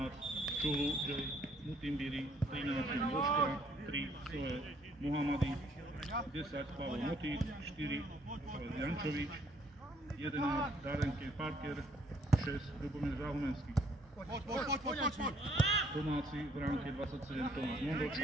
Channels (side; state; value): both; normal; correlation 0.65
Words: Čulu, J. Mutimbiri, 13 Boška, 3 Soe Mohamady, 10 Pavel Motík, 4 Pavel Jančovič, 11 Darenke Parker, 6 Ľubomír Záhumenský. Domáci v ránke 27 Tomáš